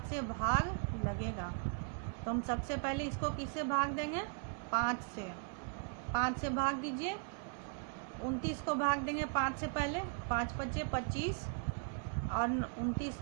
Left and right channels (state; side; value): quieter; left; 39.5 dB